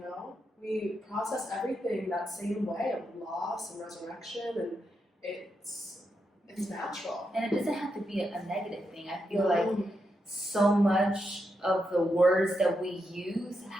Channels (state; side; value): normal; both; correlation 0.84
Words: know? We process everything that same way of loss and resurrection, and it's natural. And it doesn't have to be a negative thing. I feel like so much of the words that we use